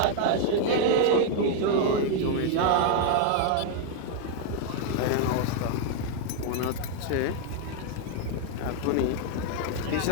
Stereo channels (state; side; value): different; both; correlation 0.00